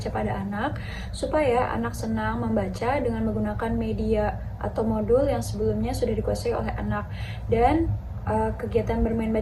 pada anak supaya anak senang membaca dengan menggunakan media atau modul yang sebelumnya sudah dikuasai oleh anak. Dan kegiatan bermain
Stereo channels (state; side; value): identical; both; correlation 1.00